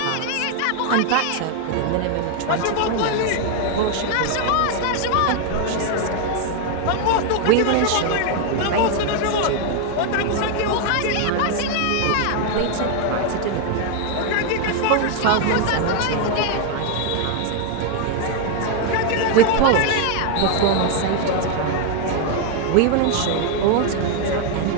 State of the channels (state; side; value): different; both; correlation 0.01